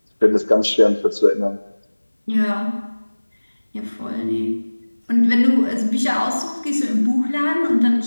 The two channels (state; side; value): inverted; both; correlation -1.00